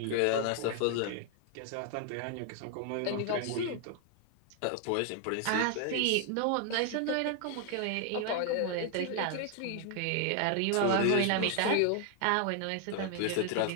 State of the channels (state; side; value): different; both; correlation 0.00